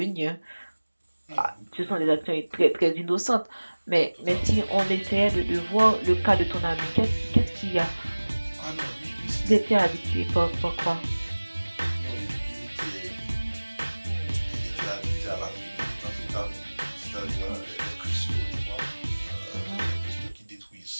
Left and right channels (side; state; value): both; inverted; correlation -1.00